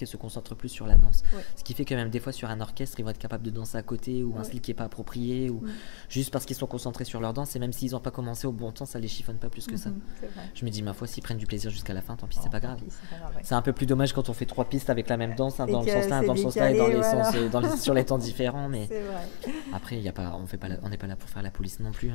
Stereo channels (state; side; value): silent; right; 59 dB below the other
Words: et se concentrent plus sur la danse. Ouais. Ce qui fait que même des fois sur un orchestre, ils vont être capables de danser à côté ou un style qui est pas approprié ou juste parce qu'ils sont concentrés sur leur danse et même s'ils n'ont pas commencé au bon temps, ça les chiffonne pas plus que ça. C'est vrai. Je me dis ma foi, s'ils prennent du plaisir jusqu'à la fin, tant pis, c'est pas grave. C'est pas grave, ouais. C'est un peu plus dommage quand on fait 3 pistes avec la même danse, dans le Et que sens-là, c'est dans le sens-là et décalé, dans les sur les temps différents. Mais C'est vrai. après, on n'est pas là pour faire la police non plus.